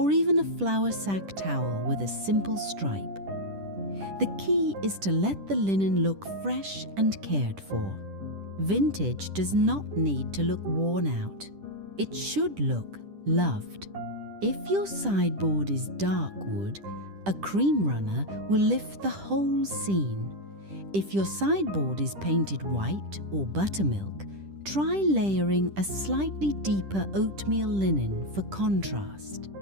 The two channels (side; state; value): left; late; 10 ms